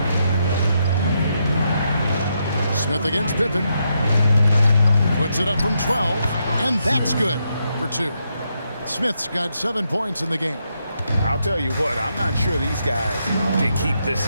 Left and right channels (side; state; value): both; inverted; correlation -0.81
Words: Smith against Pippen. Puts it up from 12, and that's good for 2. Smith's got 7 points in the game. I'll tell you what, I'm not sure these guys can keep this